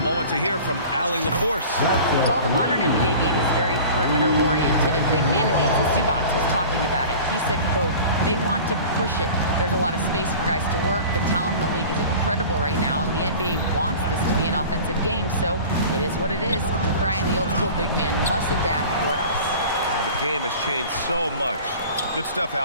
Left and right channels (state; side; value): inverted; both; correlation -0.40